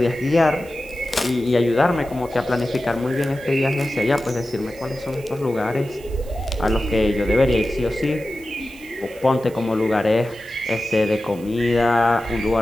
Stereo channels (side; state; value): right; noise; hiss, 23 dB below the sound